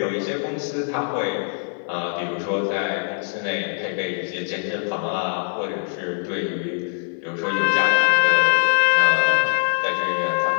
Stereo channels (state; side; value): silent; right; 55 dB below the other